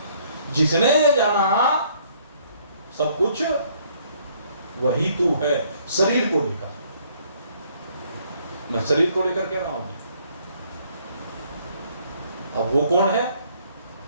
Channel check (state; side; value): inverted; both; correlation -0.64